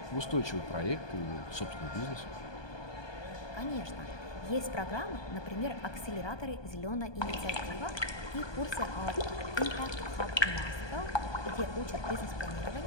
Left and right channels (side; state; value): right; late; 1.2 ms